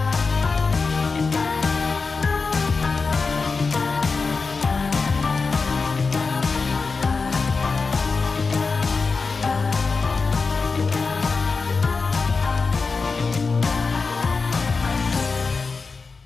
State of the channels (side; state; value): right; quieter; 4.5 dB